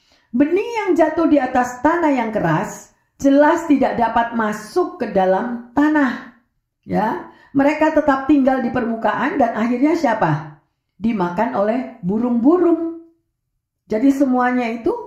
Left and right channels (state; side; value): identical; both; correlation 1.00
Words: Benih yang jatuh di atas tanah yang keras jelas tidak dapat masuk ke dalam tanah. Ya, mereka tetap tinggal di permukaan dan akhirnya siapa? Dimakan oleh burung-burung. Jadi semuanya